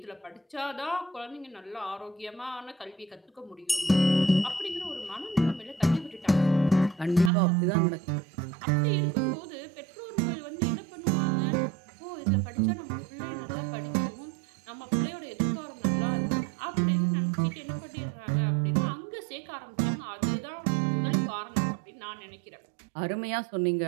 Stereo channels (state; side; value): drops out; left; at 7.3 s